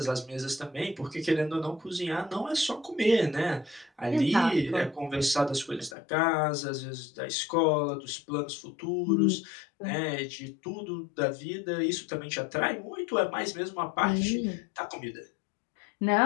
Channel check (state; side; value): drops out; right; at 6.0 s